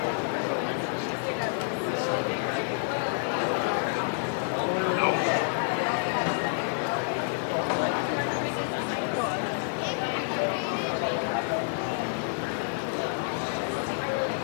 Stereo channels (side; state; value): right; silent; 58 dB below the other